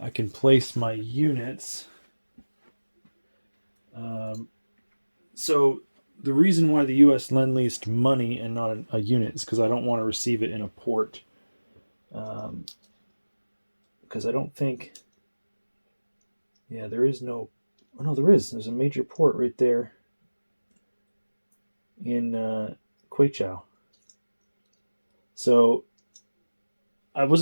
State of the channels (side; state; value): both; inverted; correlation -1.00